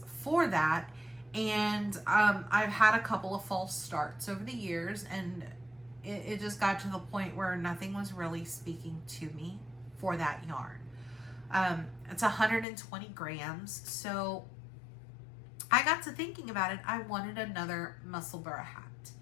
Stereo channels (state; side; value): drops out; right; at 12.7 s